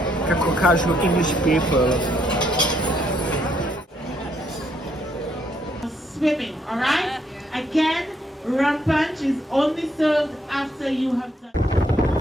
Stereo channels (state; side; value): normal; both; correlation 0.72